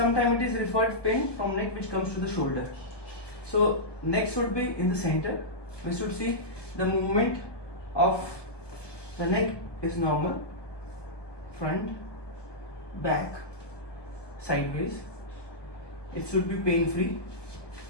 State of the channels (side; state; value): right; late; 1.2 ms